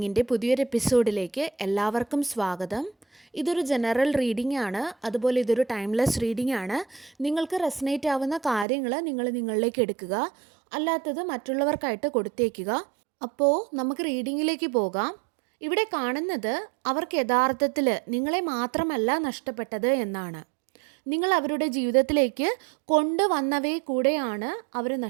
പുതിയൊരു എപ്പിസോഡിലേക്ക് എല്ലാവർക്കും സ്വാഗതം. ഇതൊരു ജനറൽ റീഡിംഗ് ആണ്, അതുപോലെ ഇതൊരു ടൈംലെസ് റീഡിംഗ് ആണ്. നിങ്ങൾക്ക് റെസനേറ്റ് ആവുന്ന കാര്യങ്ങൾ നിങ്ങളിലേക്ക് എടുക്കുക, അല്ലാത്തത് മറ്റുള്ളവർക്കായിട്ട് കൊടുത്തേക്കുക. അപ്പോൾ നമുക്ക് റീഡിങ്ങിലേക്ക് പോകാം. ഇവിടെ കാണുന്നത് അവർക്ക് യഥാർത്ഥത്തിൽ നിങ്ങളെ മാത്രമല്ല നഷ്ടപ്പെട്ടത് എന്നാണ്. നിങ്ങൾ അവരുടെ ജീവിതത്തിലേക്ക് കൊണ്ടുവന്നവയെ കൂടെയാണ് അവർ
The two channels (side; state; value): left; drops out; at 8.7 s